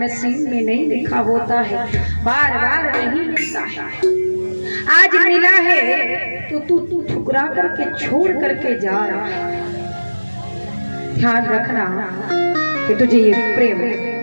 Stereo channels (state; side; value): inverted; both; correlation -1.00